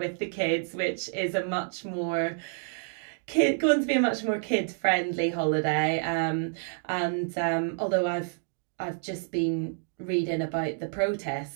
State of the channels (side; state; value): left; silent; 56 dB below the other